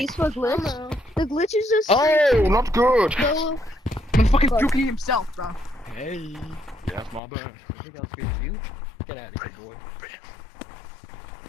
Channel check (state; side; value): drops out; right; at 7.2 s